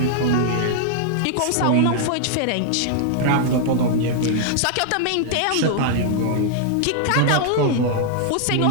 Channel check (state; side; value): different; both; correlation -0.01